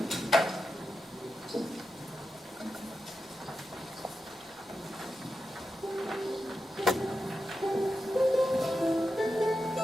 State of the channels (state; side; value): normal; both; correlation 0.89